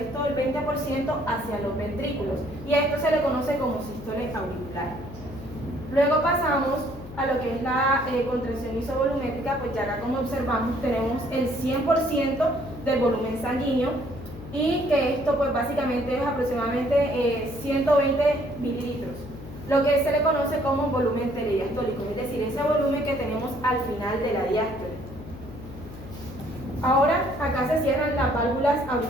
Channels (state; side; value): noise; left; hum, 14 dB below the sound